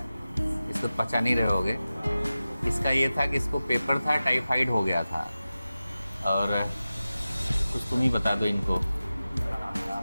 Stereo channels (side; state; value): both; inverted; correlation -0.95